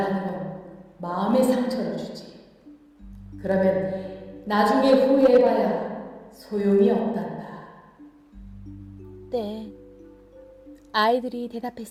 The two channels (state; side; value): identical; both; correlation 1.00